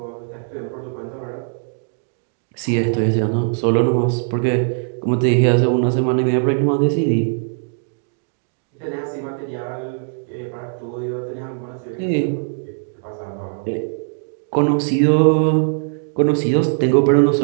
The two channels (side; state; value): left; silent; digital silence